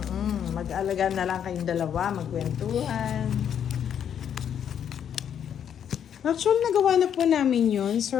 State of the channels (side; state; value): right; quieter; 8.8 dB